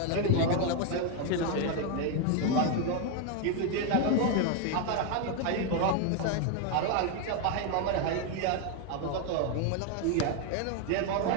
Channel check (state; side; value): different; both; correlation 0.01